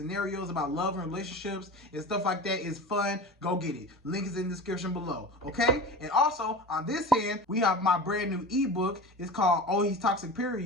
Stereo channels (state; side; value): normal; both; correlation 0.32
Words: about love and relationships and stuff like that. It's fun. Go get it. Link is in the description below. Okay? And also, on this hand, we have my brand new ebook. It's called Oh He's Toxic